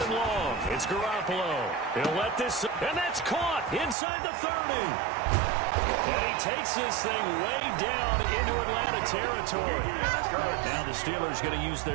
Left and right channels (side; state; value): left; drops out; at 4.0 s